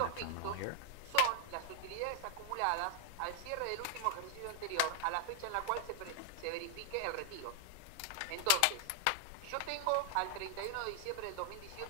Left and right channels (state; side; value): different; both; correlation 0.00